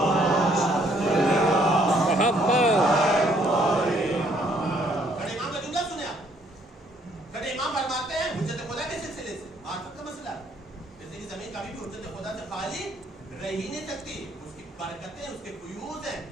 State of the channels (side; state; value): both; normal; correlation 0.66